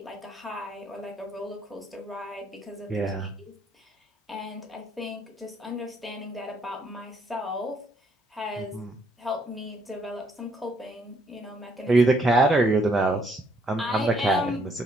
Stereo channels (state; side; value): normal; both; correlation 0.69